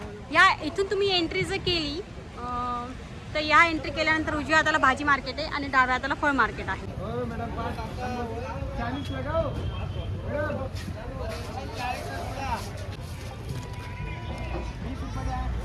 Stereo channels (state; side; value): identical; both; correlation 1.00